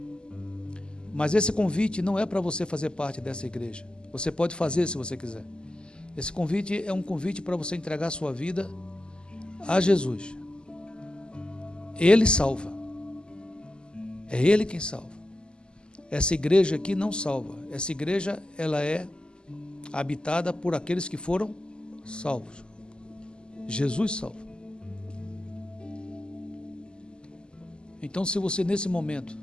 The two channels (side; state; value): right; late; 0.048 ms